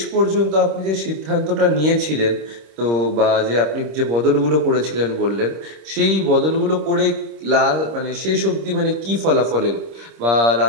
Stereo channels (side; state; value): left; late; 26 ms